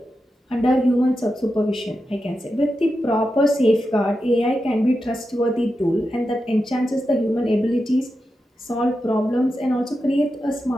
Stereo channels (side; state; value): both; normal; correlation 0.89